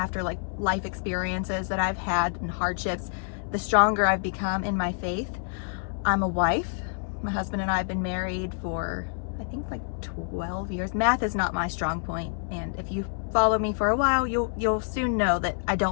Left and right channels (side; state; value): right; silent; digital silence